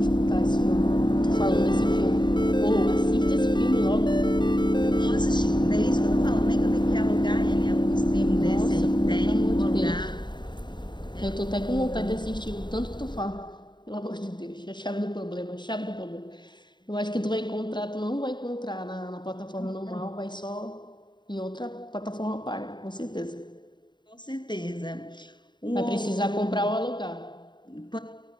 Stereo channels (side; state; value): right; late; 0.22 ms